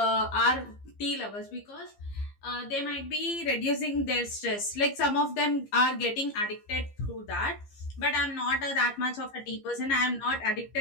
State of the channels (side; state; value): right; late; 15 ms